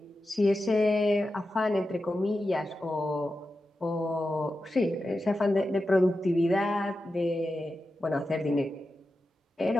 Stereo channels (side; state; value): both; normal; correlation 0.91